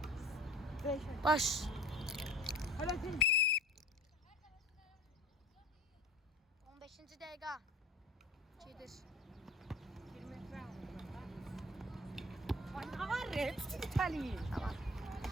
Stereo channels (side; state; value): both; normal; correlation 0.43